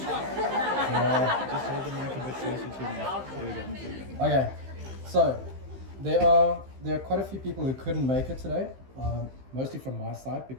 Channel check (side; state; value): left; late; 15 ms